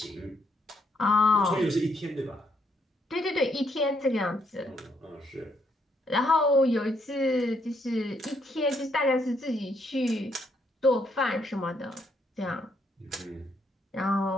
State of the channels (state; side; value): normal; both; correlation 0.74